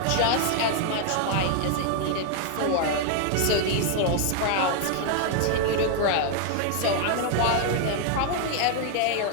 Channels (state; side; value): different; both; correlation 0.00